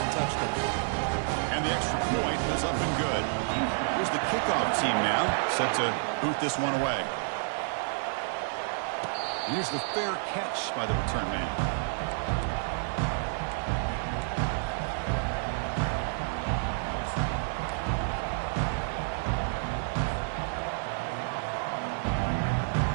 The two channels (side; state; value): left; silent; digital silence